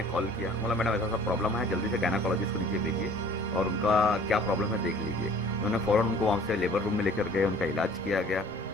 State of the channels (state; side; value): normal; both; correlation 0.51